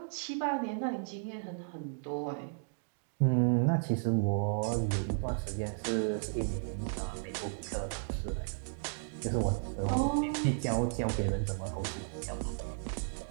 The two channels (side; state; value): left; silent; digital silence